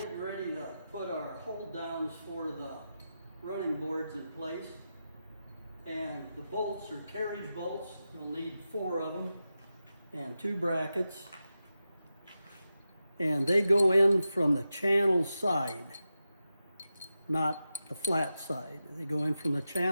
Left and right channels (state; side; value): inverted; both; correlation -0.91